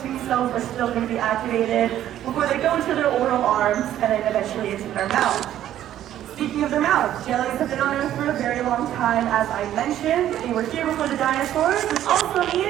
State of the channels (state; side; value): quieter; left; 11.9 dB